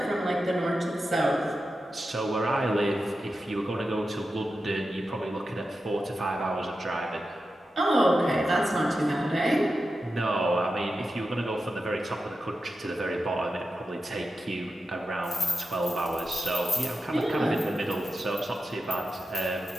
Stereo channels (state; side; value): normal; both; correlation 0.90